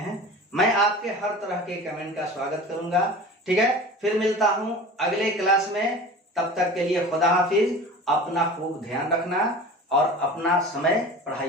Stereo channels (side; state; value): both; normal; correlation 0.37